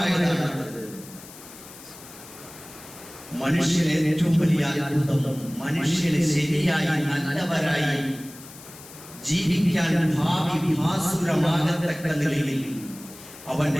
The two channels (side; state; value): left; noise; hiss, 18 dB below the sound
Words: മനുഷ്യന് ഏറ്റവും വലിയ അത്ഭുതം മനുഷ്യന് ശരിയായി നല്ലവരായി ജീവിക്കാൻ ഭാവി ഭാസുരമാകത്തക്ക നിലയിൽ